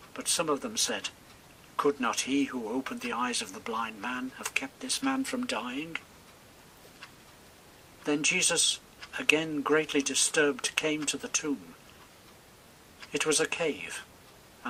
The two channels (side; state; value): both; identical; correlation 1.00